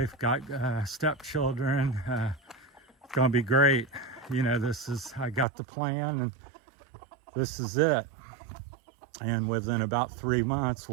got stepchildren. It's gonna be great. I got the plan, and this is it. And within about 3 months,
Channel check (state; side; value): drops out; left; at 5.5 s